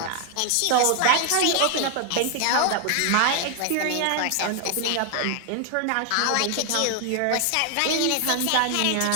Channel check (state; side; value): different; both; correlation 0.00